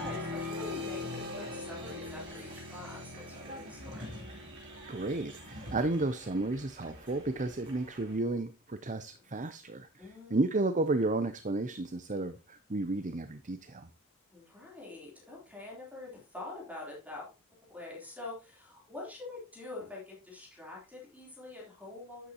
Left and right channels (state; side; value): normal; both; correlation 0.43